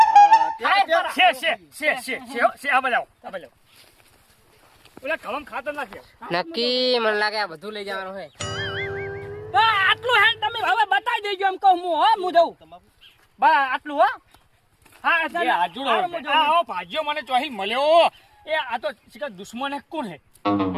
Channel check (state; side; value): identical; both; correlation 1.00